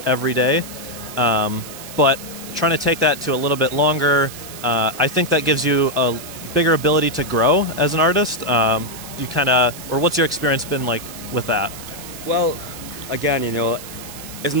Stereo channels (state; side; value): noise; right; hiss, 14 dB below the sound